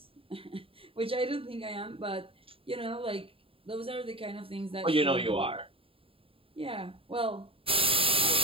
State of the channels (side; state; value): left; late; 0.27 ms